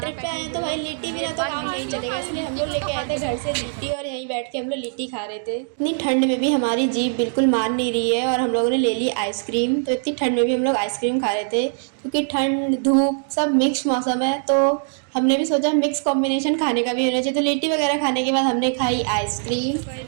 पे आए हैं, तो भाई लिट्टी बिना तो काम नहीं चलेगा, इसलिए हम लोग लेके आए थे घर से लिट्टी और यहीं बैठ के हम लोग लिट्टी खा रहे थे। इतनी ठंड में भी हमारी जीभ बिल्कुल मान नहीं रही है और हम लोगों ने ले ली आइसक्रीम। तो इतनी ठंड में भी हम लोग आइसक्रीम खा रहे थे, क्योंकि ठंड धूप सब मिक्स मौसम है, तो हमने भी सोचा मिक्स कॉम्बिनेशन खाने का भी होना चाहिए। तो लिट्टी वगैरह खाने के बाद हमने खाई आइसक्रीम,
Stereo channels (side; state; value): left; silent; digital silence